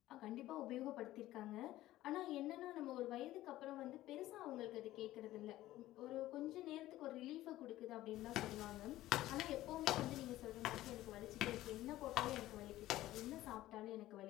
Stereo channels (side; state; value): right; quieter; 15.4 dB